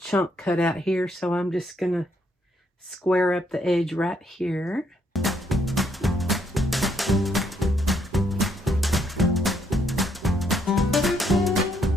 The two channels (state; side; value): normal; both; correlation 0.72